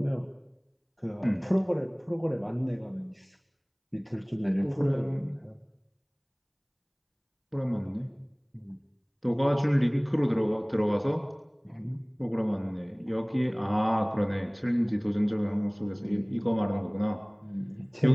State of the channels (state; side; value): identical; both; correlation 1.00